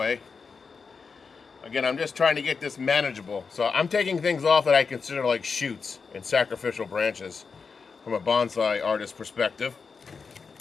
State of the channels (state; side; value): quieter; right; 5.2 dB